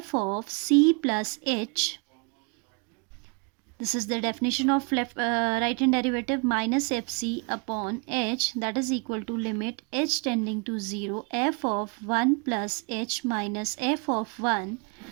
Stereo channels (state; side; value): quieter; left; 34.0 dB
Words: of c plus h, this is the definition of right hand derivative, minus fc upon h, that is equal to limit h tending to 0 f of 1 plus h minus f of 1